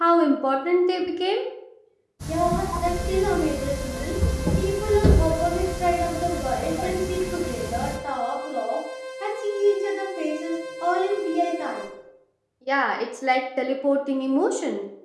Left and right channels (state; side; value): identical; both; correlation 1.00